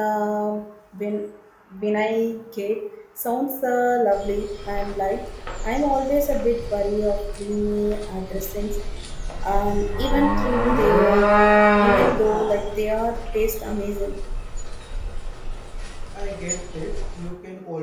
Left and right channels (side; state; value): both; identical; correlation 1.00